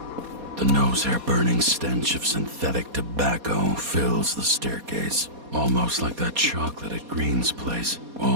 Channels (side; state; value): left; late; 4.2 ms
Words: The nose-hair-burning stench of synthetic tobacco fills the staircase. Almost like that chocolate at Green's place.